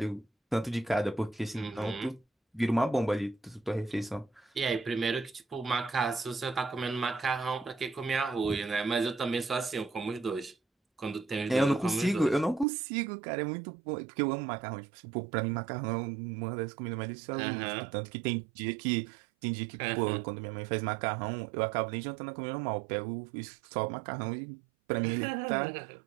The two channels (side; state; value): left; drops out; at 12.7 s